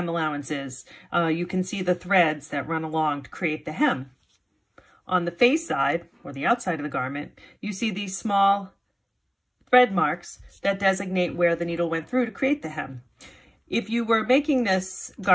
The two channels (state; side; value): identical; both; correlation 1.00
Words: allowance is, you can see the threads that run along to create the hem. On the face side, or the outside of the garment, you see these small thread marks that designate where the needle went through to create the hem. If you were making this